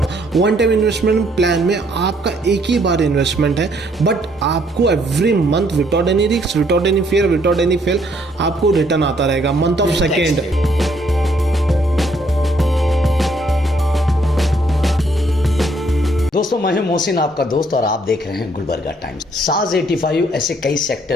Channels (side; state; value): both; normal; correlation 0.68